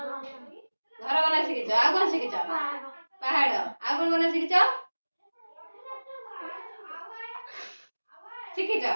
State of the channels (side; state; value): both; inverted; correlation -1.00